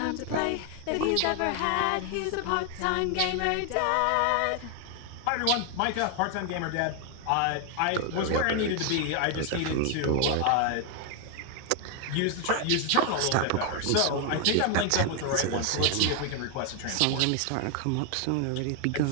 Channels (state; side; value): different; both; correlation 0.00